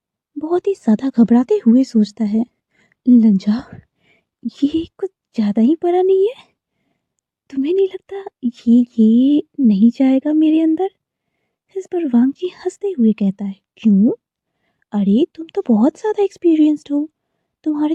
बहुत ही ज्यादा घबराते हुए सोचता है, लंजा, ये कुछ ज्यादा ही बड़ा नहीं है? तुम्हें नहीं लगता ये नहीं जाएगा मेरे अंदर? इस पर वांगजी हंसते हुए कहता है, क्यों? अरे तुम तो बहुत ज्यादा एक्सपीरियंस्ड हो,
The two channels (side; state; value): both; identical; correlation 1.00